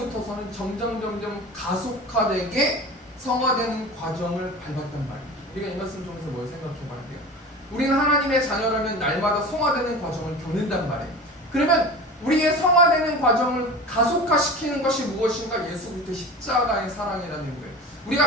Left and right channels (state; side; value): normal; both; correlation 0.34